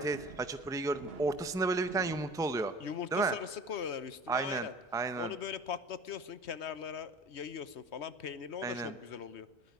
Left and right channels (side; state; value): both; normal; correlation 0.44